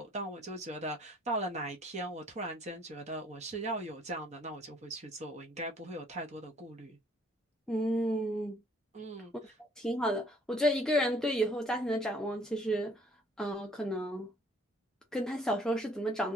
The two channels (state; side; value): normal; both; correlation 0.60